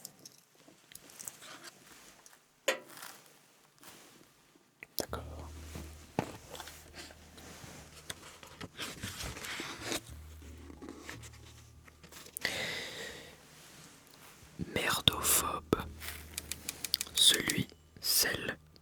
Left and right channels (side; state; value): both; identical; correlation 1.00